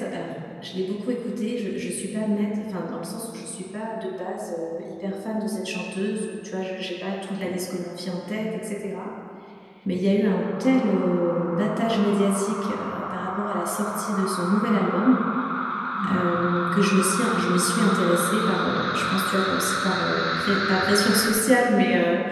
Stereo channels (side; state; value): both; identical; correlation 1.00